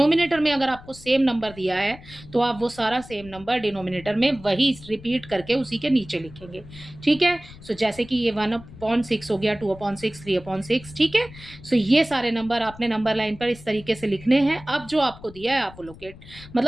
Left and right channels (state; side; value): noise; left; rumble, 19 dB below the sound